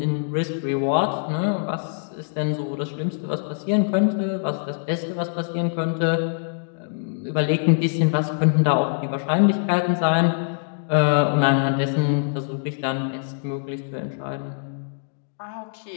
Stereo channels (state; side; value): silent; right; digital silence